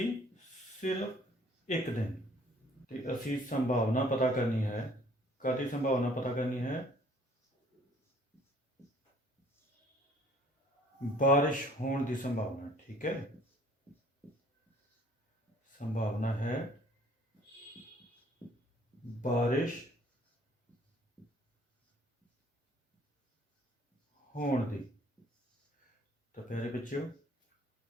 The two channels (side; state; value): both; normal; correlation 0.57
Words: सिर्फ एक दिन। तो असी संभावना पता करनी है। कादी संभावना पता करनी है? बारिश होने की संभावना। ठीक है, संभावना है बारिश होने की। तो प्यारे बच्चों,